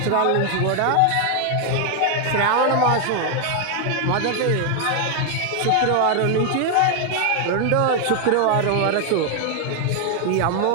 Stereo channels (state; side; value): different; both; correlation 0.00